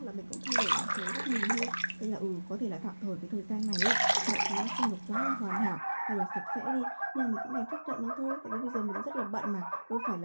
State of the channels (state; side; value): inverted; both; correlation -1.00